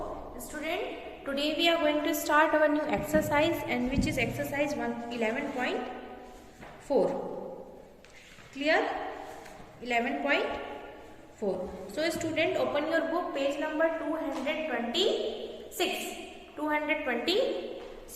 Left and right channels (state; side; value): identical; both; correlation 1.00